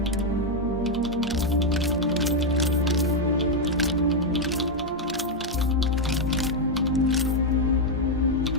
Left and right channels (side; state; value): both; normal; correlation 0.01